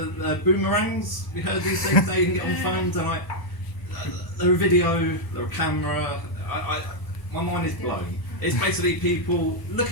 boomerangs. We heard these things now you can get on phones, and they're a video, they're a camera. My mind is blown. It's basically people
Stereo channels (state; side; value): late; right; 1.0 ms